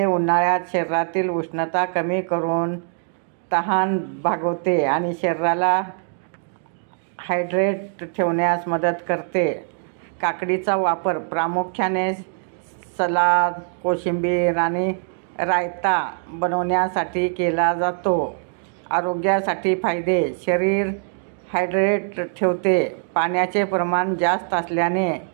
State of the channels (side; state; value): left; silent; 64 dB below the other